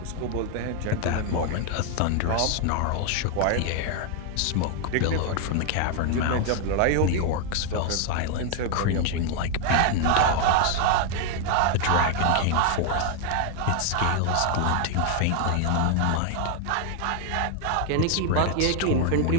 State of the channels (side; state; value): both; different; correlation 0.00